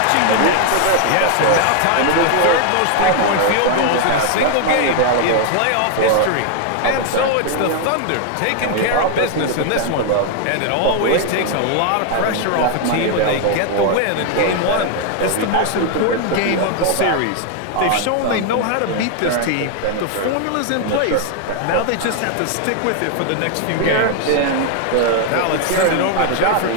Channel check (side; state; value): both; different; correlation 0.00